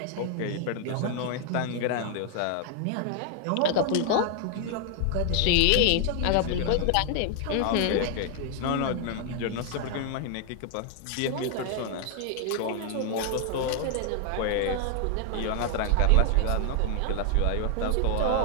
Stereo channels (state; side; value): different; both; correlation 0.00